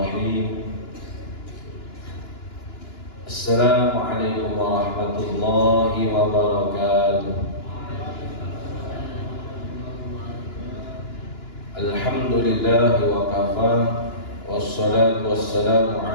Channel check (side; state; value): right; late; 2.9 ms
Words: Assalamualaikum warahmatullahi wabarakatuh. Alhamdulillah wa kafa, wassalatu wassalamu